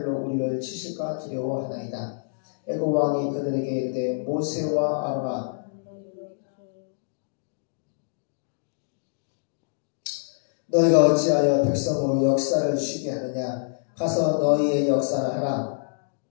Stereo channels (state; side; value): silent; right; digital silence